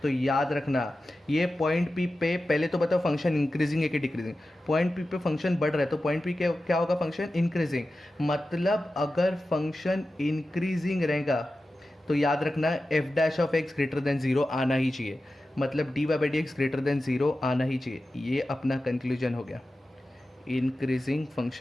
तो याद रखना, ये पॉइंट पी पे पहले तो बताओ फंक्शन इंक्रीजिंग है कि डिक्रीजिंग। पॉइंट पी पे फंक्शन बढ़ रहा है तो पॉइंट पी क्या होगा, फंक्शन इंक्रीजिंग। मतलब अगर फंक्शन इंक्रीजिंग रहेगा तो याद रखना f dash of x greater than zero आना ही चाहिए, मतलब D Y by D x greater than zero आना ही चाहिए। ये अपना कंक्लूजन हो गया इंक्रीजिंग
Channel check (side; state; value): both; normal; correlation 0.93